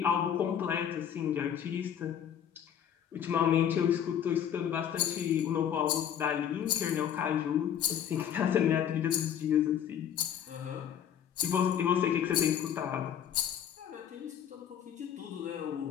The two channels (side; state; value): right; quieter; 9.3 dB